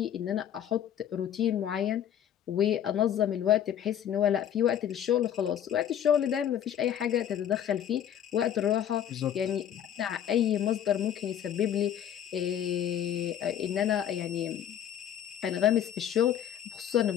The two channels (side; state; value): right; quieter; 9.9 dB